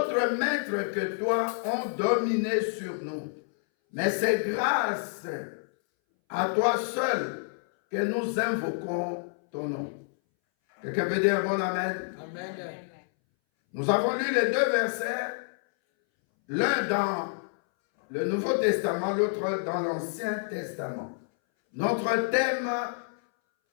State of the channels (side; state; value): right; silent; 59 dB below the other